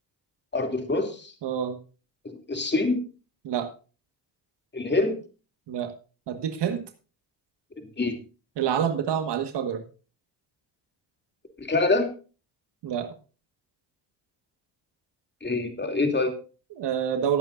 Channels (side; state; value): both; normal; correlation 0.16